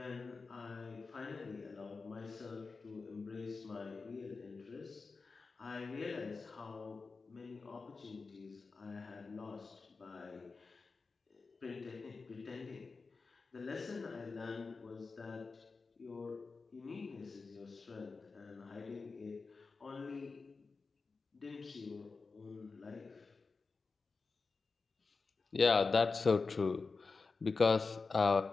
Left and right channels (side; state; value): right; quieter; 4.3 dB